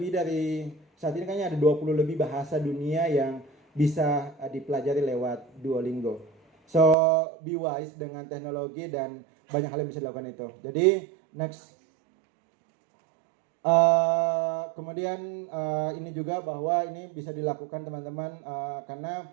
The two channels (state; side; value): drops out; left; at 7.0 s